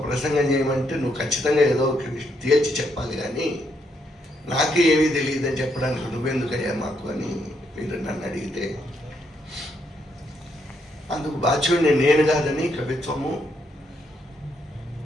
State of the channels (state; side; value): normal; both; correlation 0.76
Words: ప్రసంగం చేయమంటే నువ్వు ఖచ్చితంగా ఏదో ఒక తేల్చి చెప్పాలి, కానీ నాకే ఏమీ తెలియదని చెప్పడానికి నువ్వెందుకయ్యా మాకు అని మీరు నన్ను అడిగితే, అందుకు బాధ్యుడిని నేను కాదని